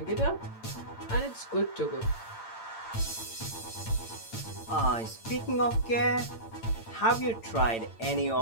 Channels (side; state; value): right; late; 8.8 ms